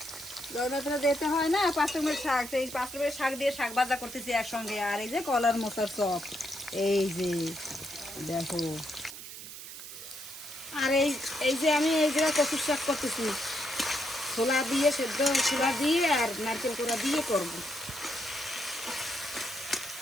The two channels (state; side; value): noise; right; hiss, 12 dB below the sound